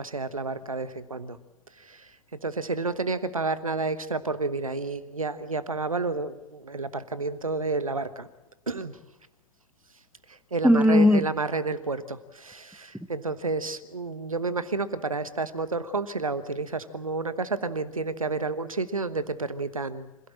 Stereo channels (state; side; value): normal; both; correlation 0.31